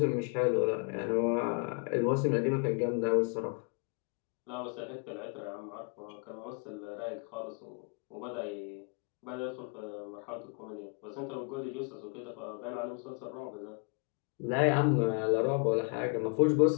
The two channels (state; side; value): quieter; right; 37.1 dB